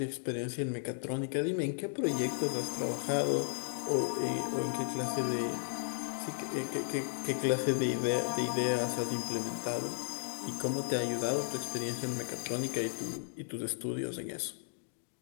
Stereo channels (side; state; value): right; silent; digital silence